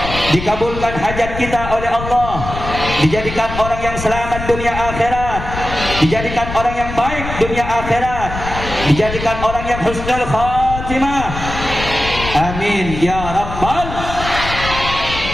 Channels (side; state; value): left; noise; rumble, 8 dB below the sound